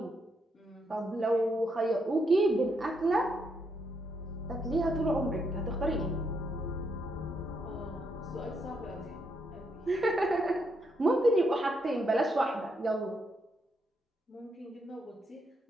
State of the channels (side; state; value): both; normal; correlation 0.77